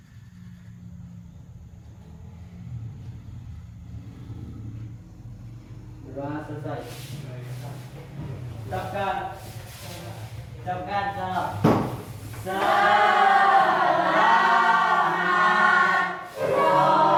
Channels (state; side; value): identical; both; correlation 1.00